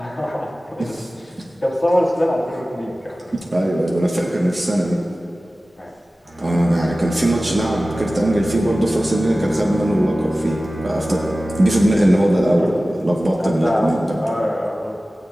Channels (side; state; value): both; normal; correlation 0.96